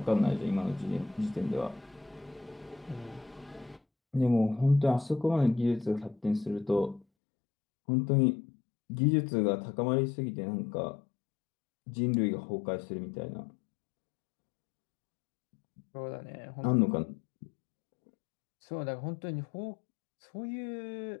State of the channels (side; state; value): right; drops out; at 7.1 s